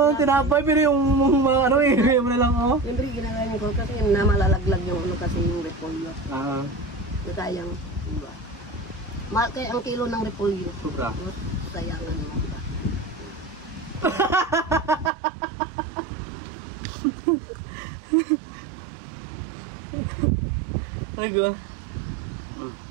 tinapay, pero yung mga ano, hinagay mo na lang, oh. Siyempre, ginagawa ko kasi namalalaglag yung ano kasi yung repolyo. Sayang, diba? Mahal kaya ang kilo ng repolyo. Sobra. Sayangan mo ba? Ay, go. Ang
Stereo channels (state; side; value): drops out; left; at 15.1 s